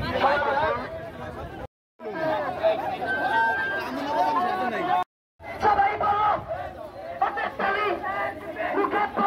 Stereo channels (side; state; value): both; identical; correlation 1.00